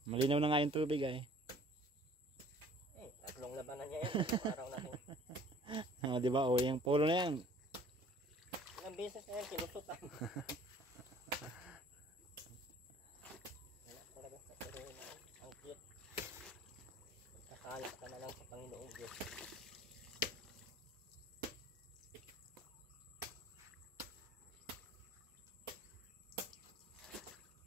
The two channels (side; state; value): both; normal; correlation 0.52